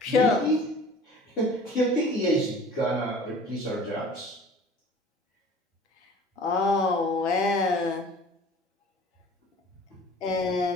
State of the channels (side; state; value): both; normal; correlation 0.46